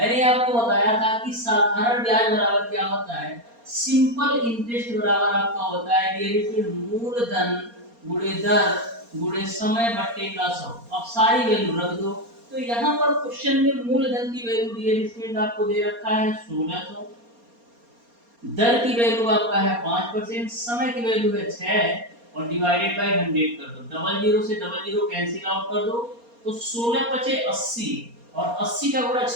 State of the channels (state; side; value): late; left; 4.3 ms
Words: आपको बताया था कि साधारण ब्याज बराबर क्या होता है, सिंपल इंटरेस्ट बराबर आपका होता है डियर स्टूडेंट मूलधन गुणे दर गुणे समय बट्टे का 100। अब सारी वैल्यू रख दो। तो यहाँ पर क्वेश्चन में मूलधन की वैल्यू डियर स्टूडेंट आपको दे रखा है 1600, दर की वैल्यू आपका है 5%, समय की वैल्यू है 6 और डिवाइडेड बाय 100 कर दो। डबल जीरो से डबल जीरो कैंसिल आउट कर दो तो 16 पचे 80 और 80 का गुणा